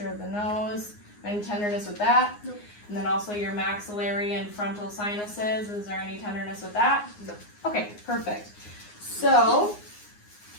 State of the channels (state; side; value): late; right; 9.7 ms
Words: of the nose. Any tenderness with that? Nope. And then also your maxillary and frontal sinuses. Is there any tenderness with that? No. Okay, perfect. So,